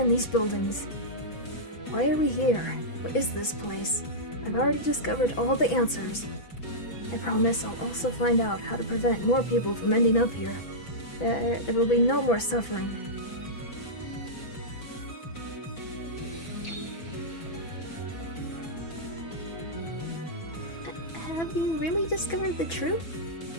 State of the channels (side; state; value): right; late; 6.0 ms